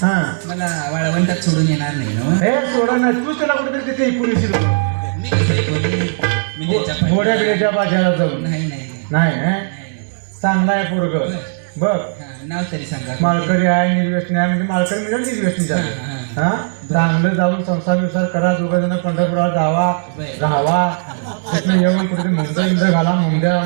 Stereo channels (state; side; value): silent; left; digital silence